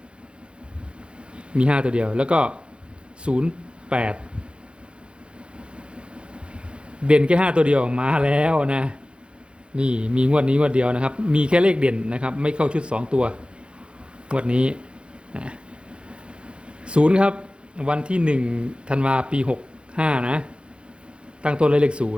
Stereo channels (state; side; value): late; left; 0.056 ms